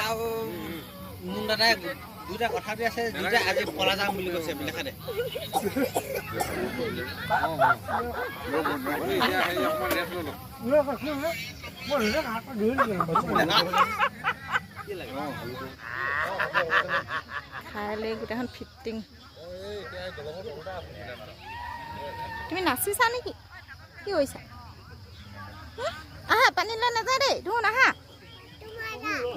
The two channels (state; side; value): identical; both; correlation 1.00